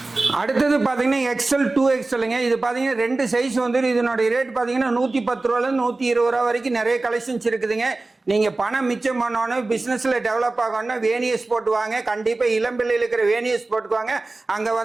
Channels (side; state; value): left; quieter; 3.3 dB